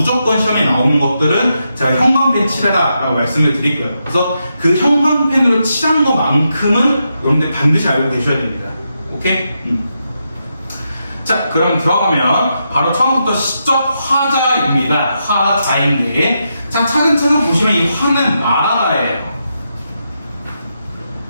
시험에 나오는 것들은 제가 형광펜 칠해라라고 말씀을 드릴 거예요. 그래서 그 형광펜으로 칠한 것만큼은 여러분들 반드시 알고 계셔야 됩니다. 오케이? 자, 그럼 들어가면 바로 처음부터 시적 화자입니다. 화자인데, 자, 차근차근 보시면 이 화는 말하다예요.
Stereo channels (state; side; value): inverted; both; correlation -0.84